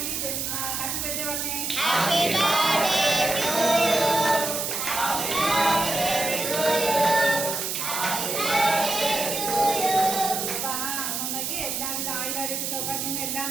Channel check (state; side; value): noise; right; hiss, 2 dB below the sound